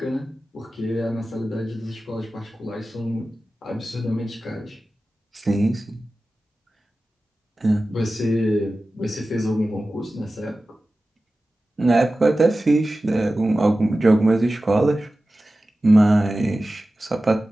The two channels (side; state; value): both; normal; correlation 0.95